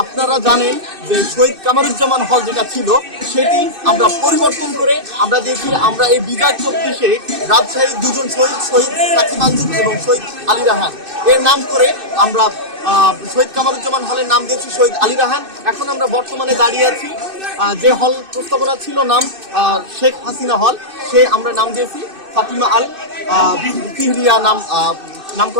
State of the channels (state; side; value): late; left; 2.6 ms